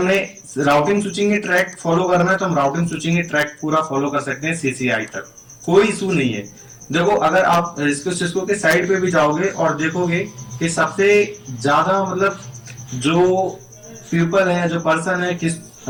राउटिंग स्विचिंग के ट्रैक फॉलो करना है तो हम राउटिंग स्विचिंग के ट्रैक पूरा फॉलो कर सकते हैं सीसीआई तक, कोई इशू नहीं है। देखो अगर आप सिस्को के साइड पे भी जाओगे और देखोगे कि सबसे ज्यादा मतलब जो पीपल है, जो पर्सन है किस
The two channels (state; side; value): identical; both; correlation 1.00